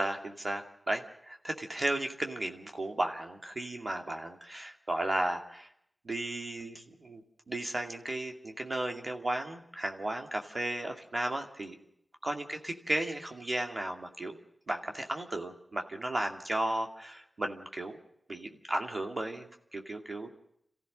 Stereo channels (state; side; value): normal; both; correlation 0.96